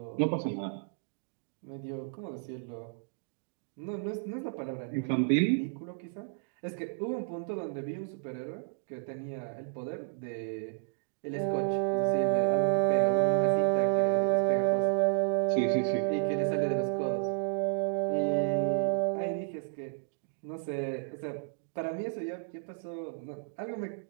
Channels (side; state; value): left; silent; digital silence